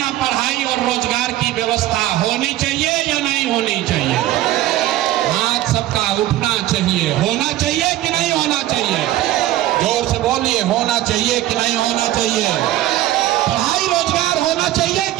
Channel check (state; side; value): quieter; left; 14.6 dB